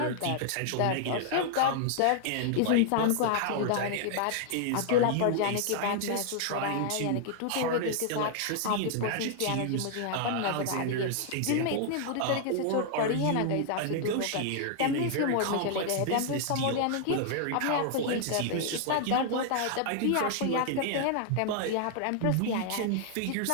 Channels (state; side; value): different; both; correlation -0.01